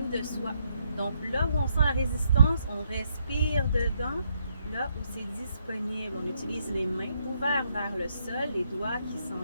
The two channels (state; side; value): inverted; both; correlation -0.75